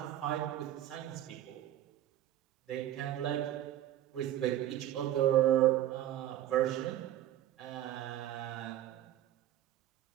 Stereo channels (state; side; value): quieter; left; 12.6 dB